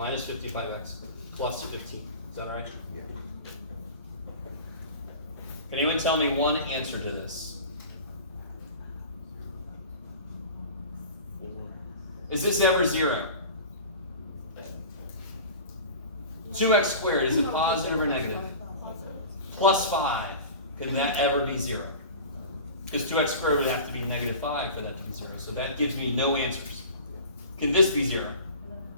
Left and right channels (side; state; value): both; inverted; correlation -0.38